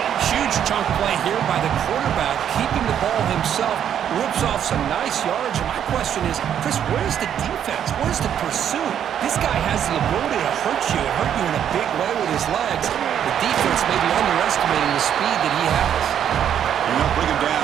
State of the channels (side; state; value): left; quieter; 9.4 dB